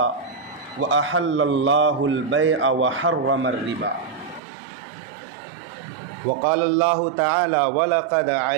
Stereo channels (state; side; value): drops out; left; at 4.4 s